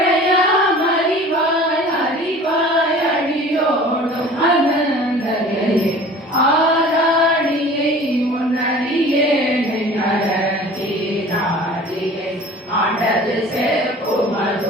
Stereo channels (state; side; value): normal; both; correlation 0.44